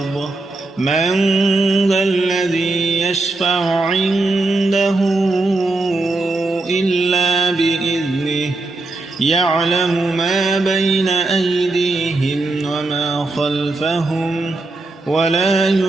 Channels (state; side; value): quieter; left; 3.1 dB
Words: من ذا الذي يشفع عنده إلا بإذنه يعلم ما بين أيديهم وما خلفهم ولا